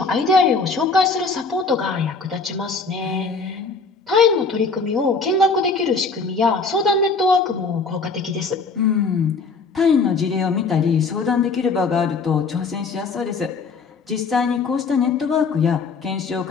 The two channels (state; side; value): quieter; right; 4.4 dB